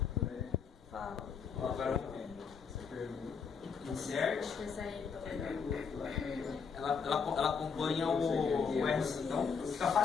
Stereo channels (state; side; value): quieter; right; 6.1 dB